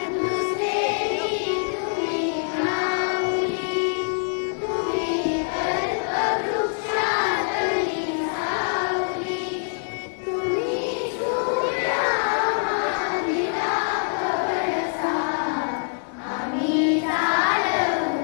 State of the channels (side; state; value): right; silent; 62 dB below the other